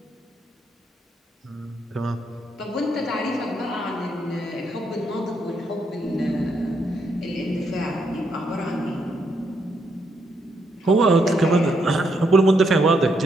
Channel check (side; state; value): both; normal; correlation 0.77